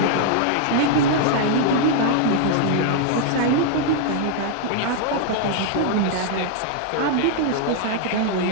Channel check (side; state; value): both; different; correlation -0.01